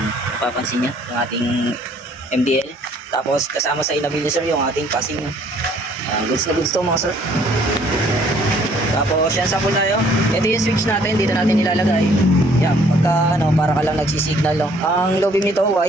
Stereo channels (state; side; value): normal; both; correlation 0.61